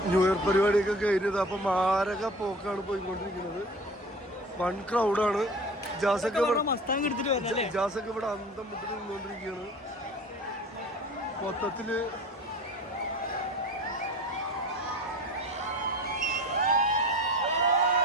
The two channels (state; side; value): normal; both; correlation 0.39